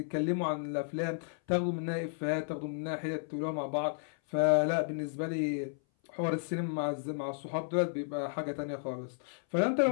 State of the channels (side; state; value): right; silent; 56 dB below the other